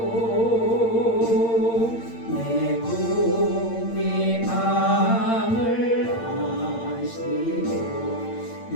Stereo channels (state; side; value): late; right; 8.8 ms